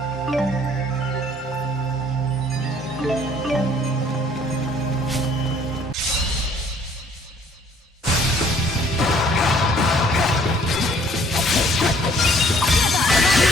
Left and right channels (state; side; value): normal; both; correlation 0.59